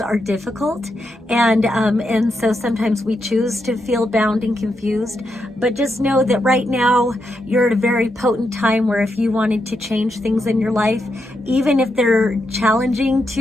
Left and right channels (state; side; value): normal; both; correlation 0.83